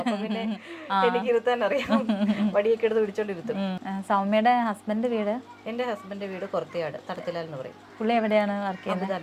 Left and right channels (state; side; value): identical; both; correlation 1.00